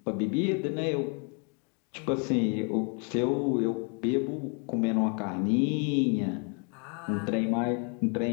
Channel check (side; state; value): right; quieter; 37.9 dB